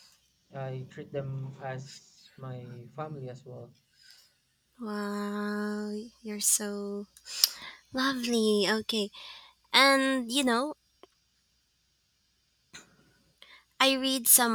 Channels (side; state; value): both; identical; correlation 1.00